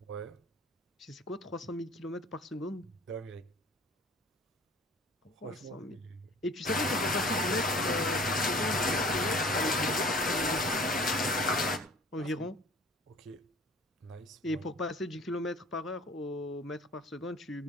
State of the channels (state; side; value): normal; both; correlation 0.47